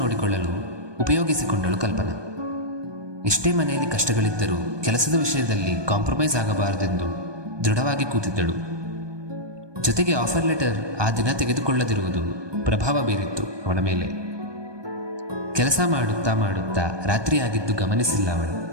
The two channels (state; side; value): late; left; 1.2 ms